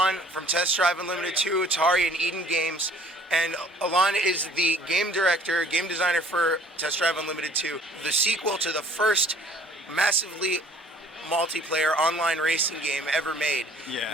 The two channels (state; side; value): normal; both; correlation 0.54